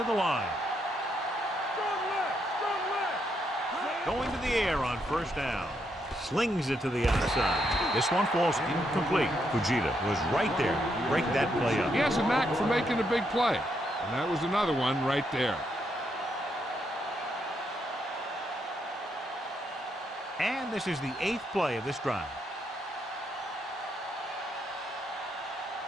the line. Going to the air on first down. Slings it to the outside. This one falls incomplete. Fujita was right there to break that play up. He has a knack for making a big play. And that was another one right there. And this is the 8th play of this drive.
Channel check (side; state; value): both; normal; correlation 0.78